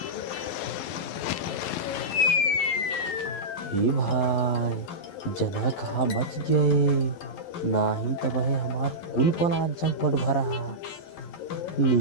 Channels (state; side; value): late; right; 11 ms